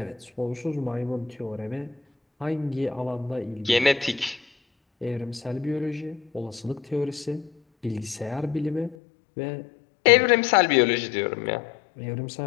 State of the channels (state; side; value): drops out; right; at 9.0 s